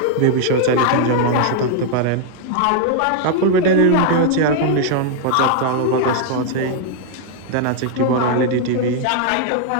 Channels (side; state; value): both; different; correlation 0.00